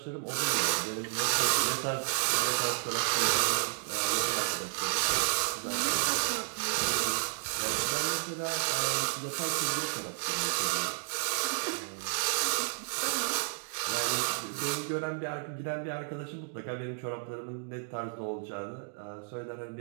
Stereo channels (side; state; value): left; silent; digital silence